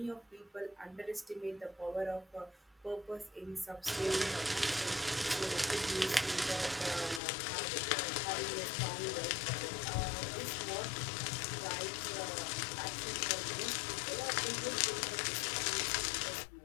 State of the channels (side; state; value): right; drops out; at 7.2 s